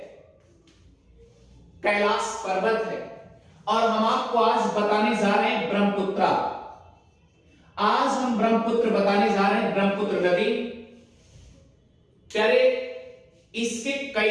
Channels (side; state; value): both; identical; correlation 1.00